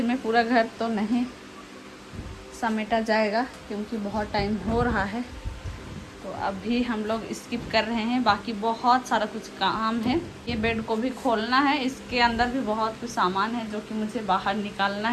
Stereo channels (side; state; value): both; identical; correlation 1.00